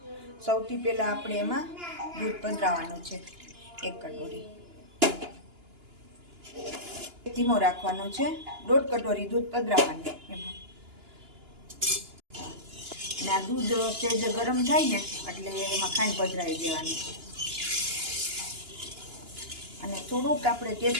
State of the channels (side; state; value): left; late; 2.9 ms